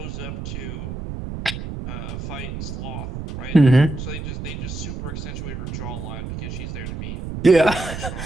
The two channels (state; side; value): noise; right; rumble, 7 dB below the sound